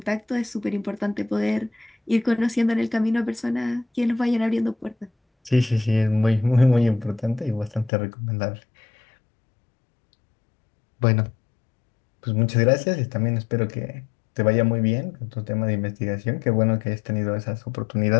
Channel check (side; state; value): right; drops out; at 7.9 s